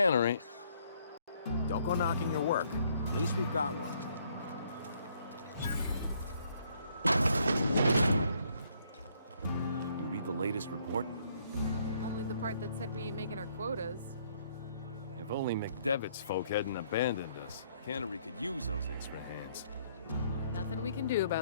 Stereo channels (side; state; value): both; inverted; correlation -0.67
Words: Don't go knocking your work. At least we've got one. You read the latest report? Only the part that said we ain't making our quotas. If only McDevitt's folk hadn't abandoned us. Cannery could use those extra hands. Nothing we can do